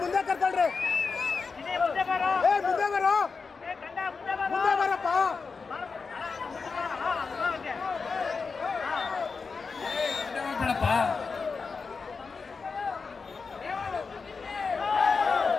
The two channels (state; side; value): quieter; right; 4.8 dB